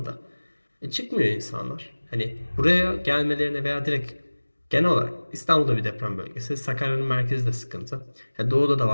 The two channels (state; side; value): inverted; both; correlation -1.00